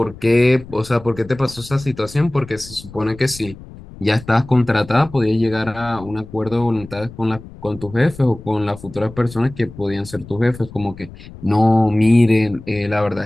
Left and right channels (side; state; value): left; noise; rumble, 17 dB below the sound